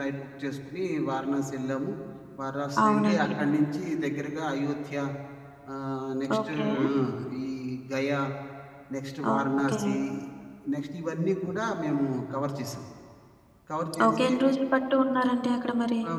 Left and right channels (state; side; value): identical; both; correlation 1.00